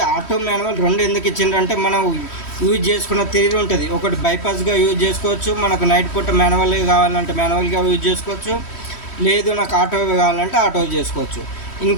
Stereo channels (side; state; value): right; late; 3.1 ms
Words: ఆటో మాన్యువల్ రెండు ఎందుకు ఇచ్చిండ్రంటే మనం యూజ్ చేసుకున్న తీరు ఉంటుంది. ఒకటి బైపాస్గా యూజ్ చేసుకోవచ్చు, మనకు నైట్ పూట మాన్యువల్గా కావాలంటే మాన్యువల్గా యూజ్ చేసుకోవచ్చు, లేదు నాకు ఆటో కావాలంటే ఆటో చేసుకోవచ్చు.